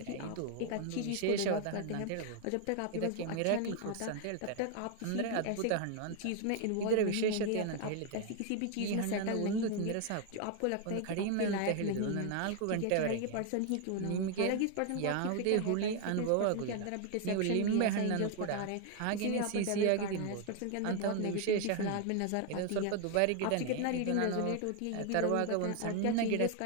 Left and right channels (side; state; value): both; different; correlation 0.01